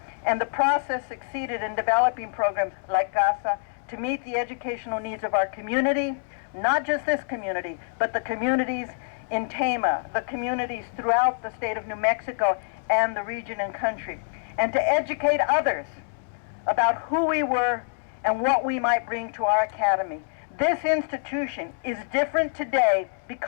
and the process succeeded in developing programs like CASA to meet the educational needs of our community, not just this community, but the communities in Tama, the communities throughout the state of New Mexico and the region and country, and to educate others about who we were and what we might bring to our academy. This institution is different today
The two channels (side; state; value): right; silent; digital silence